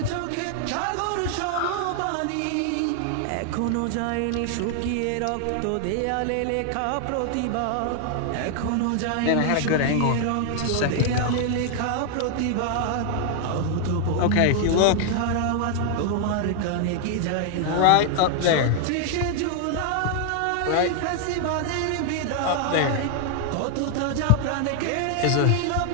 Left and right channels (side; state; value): both; different; correlation 0.00